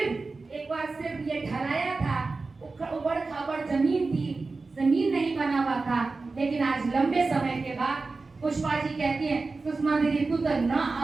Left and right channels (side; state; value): left; quieter; 3.8 dB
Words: बार सिर्फ ये ढलाया था, उबड़ खाबड़ जमीन थी, जमीन नहीं बना हुआ था। लेकिन आज लंबे समय के बाद पुष्पा जी कहती है सुषमा दीदी तू तो ना